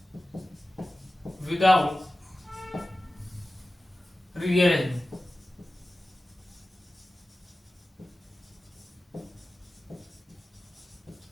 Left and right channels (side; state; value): both; normal; correlation 0.95